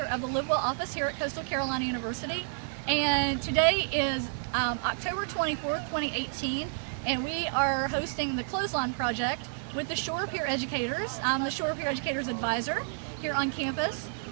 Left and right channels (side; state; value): left; silent; digital silence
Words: of the Live Well office here at Coastal Carolina University. And today is October 24th, 2018, and we are hosting the Clothesline project with the Shore Peer Educators. I'm the Shore Peer Educators Advisor here on campus,